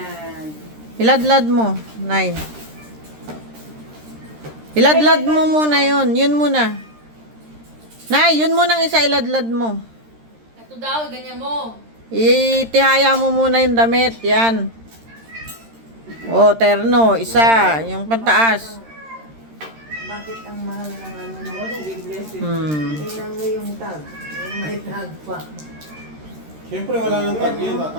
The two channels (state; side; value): late; left; 13 ms